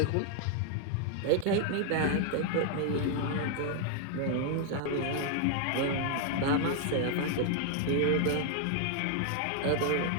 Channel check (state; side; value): different; both; correlation 0.00